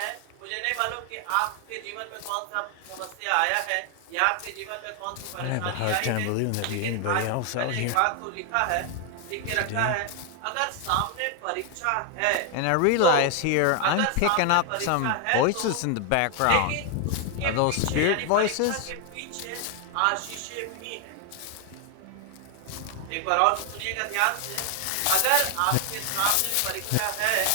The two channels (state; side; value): different; both; correlation 0.00